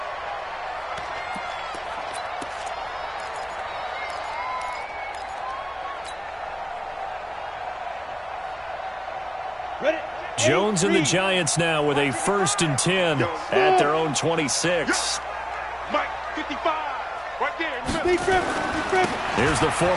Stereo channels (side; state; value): both; identical; correlation 1.00